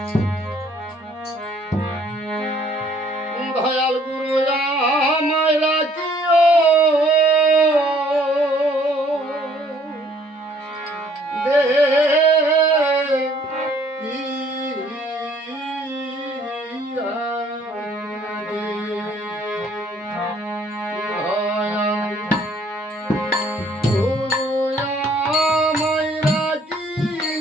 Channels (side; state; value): both; normal; correlation 0.61